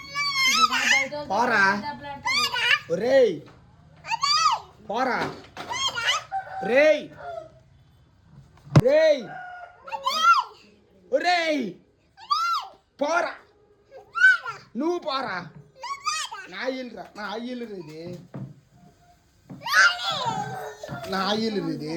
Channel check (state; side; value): identical; both; correlation 1.00